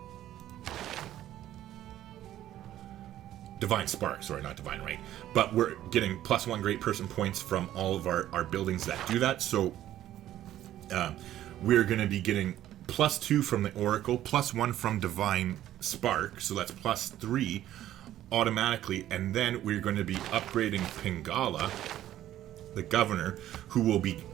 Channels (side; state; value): left; quieter; 12.8 dB